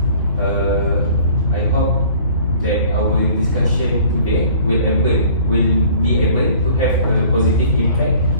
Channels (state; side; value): inverted; both; correlation -0.51